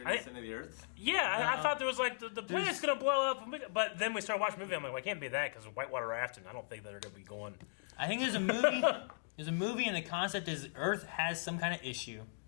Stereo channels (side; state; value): right; silent; digital silence